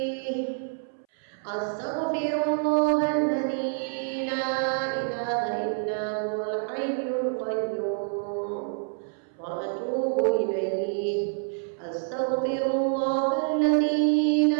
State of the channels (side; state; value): left; silent; 60 dB below the other